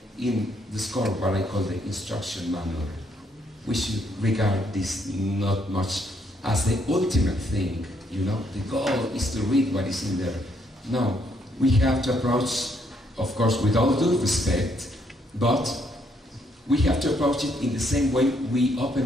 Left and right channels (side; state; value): both; normal; correlation 0.72